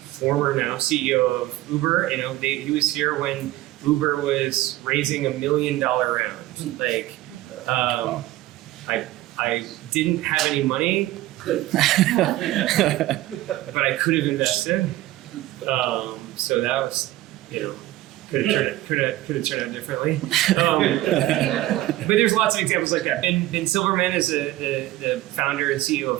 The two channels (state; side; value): quieter; left; 16.2 dB